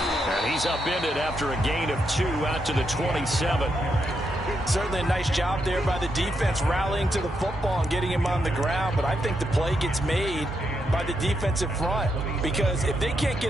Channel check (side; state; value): both; normal; correlation 0.81